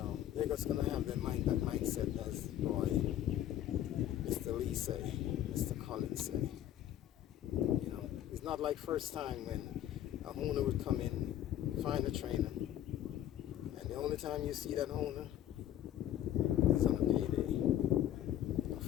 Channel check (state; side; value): quieter; right; 11.9 dB